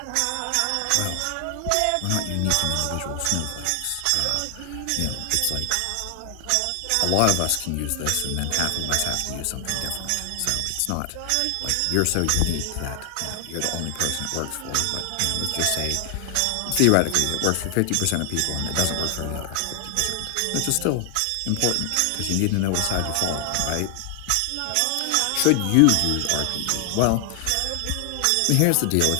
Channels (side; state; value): both; different; correlation 0.00